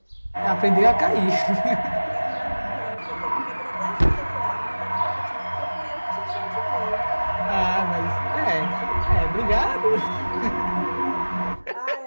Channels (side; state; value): both; inverted; correlation -1.00